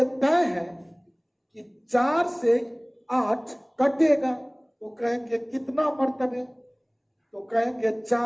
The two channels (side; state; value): both; identical; correlation 1.00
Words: तय है कि 4 से 8 कटेगा, तो कहेंगे कितना मर्तबे, तो कहेंगे